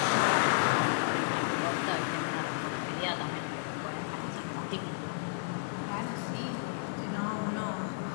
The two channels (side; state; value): right; silent; 56 dB below the other